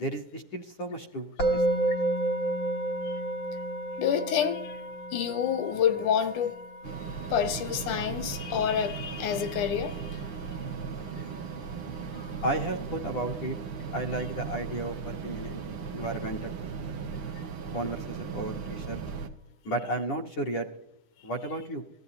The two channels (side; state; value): right; late; 10 ms